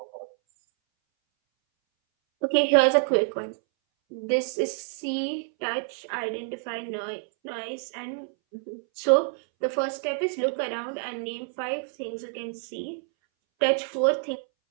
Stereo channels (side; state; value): left; silent; 60 dB below the other